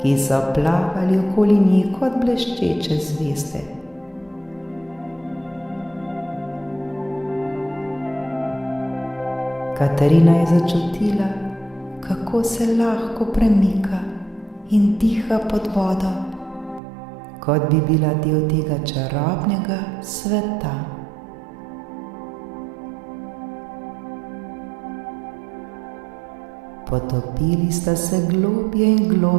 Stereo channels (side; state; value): left; drops out; at 16.8 s